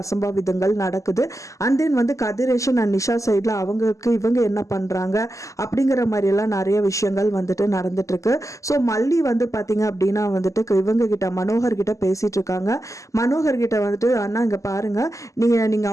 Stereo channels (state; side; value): late; right; 0.16 ms